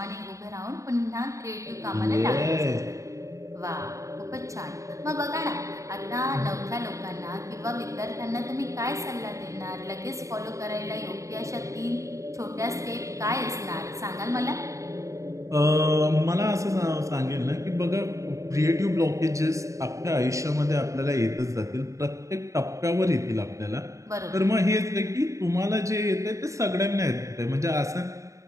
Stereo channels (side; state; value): left; late; 0.15 ms